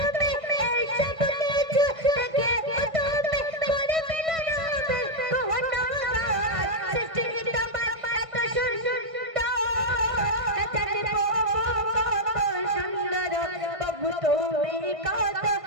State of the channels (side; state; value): left; late; 1.6 ms